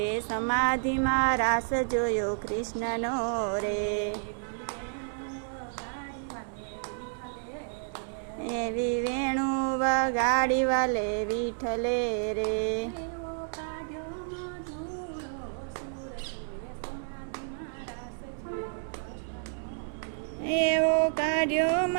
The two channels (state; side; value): silent; left; 58 dB below the other